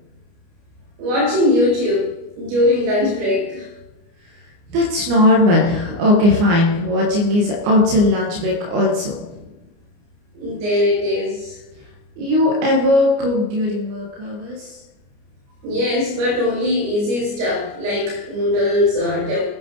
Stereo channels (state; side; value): late; left; 29 ms